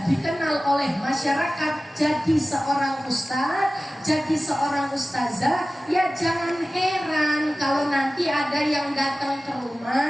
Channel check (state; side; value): normal; both; correlation 0.96